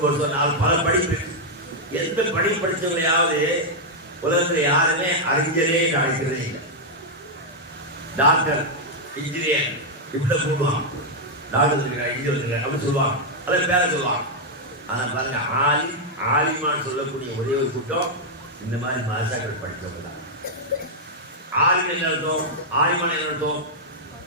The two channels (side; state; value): both; normal; correlation -0.03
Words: வருஷம் 4 பல படிப்பு. எந்த படிப்பு படித்தவங்களையாவது உலகத்தில் யாருமே அறிஞரே அழைக்கிறதே இல்லை. டாக்டர் இன்ஜினியர் இப்படி கூடுவாங்க, டாக்டர் இன்ஜினியர் அப்படின்னு சொல்லுவாங்க, அதை பேர சொல்லுவாங்க. ஆனால் பாருங்க, ஆலிமான்னு சொல்லக்கூடிய ஒரே ஒரு கூட்டம் இந்த மாதிரி மதசாக்கள் படித்தவங்க தான். ஆலிம் என்ன அர்த்தம்? ஆலிமான் என்ன அர்த்தம்?